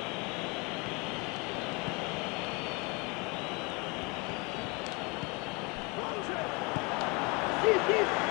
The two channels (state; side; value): quieter; right; 28.7 dB